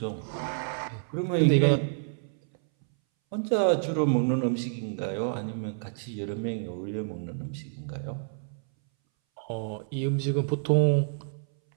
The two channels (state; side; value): silent; left; 59 dB below the other